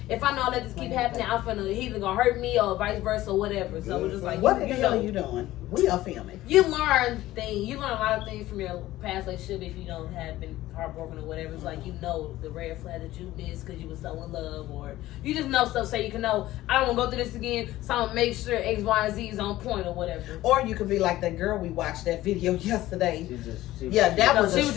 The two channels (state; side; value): quieter; right; 15.8 dB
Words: if I know that this keep happening, he's either gonna hurt me or vice versa or whatever. So it's just like, what the hell are you doing? We are filming. You learn things. You learn a lot of things from your past relationship if you don't have been heartbroken or whatever. It's like, you know the red flag that you missed because you were so in love, or you just know stuff so you can know, I don't want to go through this again, so I'm going to make sure X, Y, and Z is on point or whatever. Or you could be like that girl we watched that video yesterday. She was a